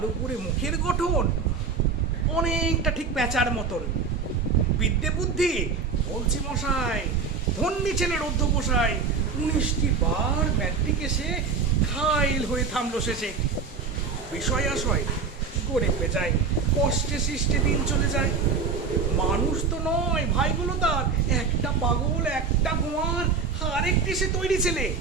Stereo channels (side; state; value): left; quieter; 5.2 dB